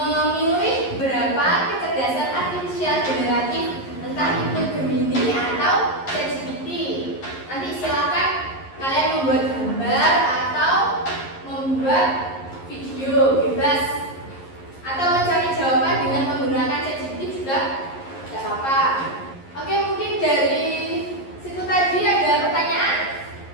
berapa kecerdasan artifisial generatif, entah itu Gemini atau ChatGPT. Nanti silahkan kalian membuat gambar atau membuat video bebas, atau mencari jawaban dengan menggunakan ChatGPT juga tidak apa-apa. Oke, mungkin dari situ tadi ada pertanyaan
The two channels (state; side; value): late; right; 11 ms